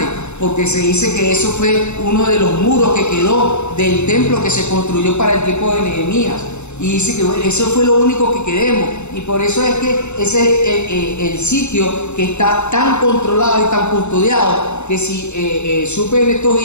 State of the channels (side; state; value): right; late; 0.82 ms